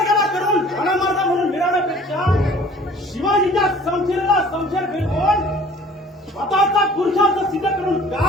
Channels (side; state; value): both; normal; correlation 0.50